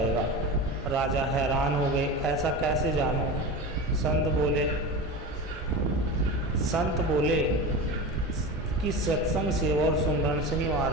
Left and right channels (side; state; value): both; normal; correlation 0.27